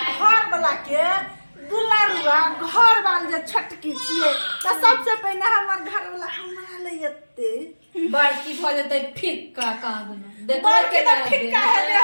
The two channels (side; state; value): both; inverted; correlation -1.00